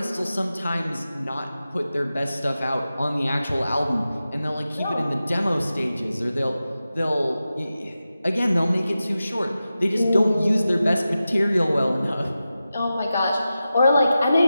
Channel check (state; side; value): inverted; both; correlation -0.93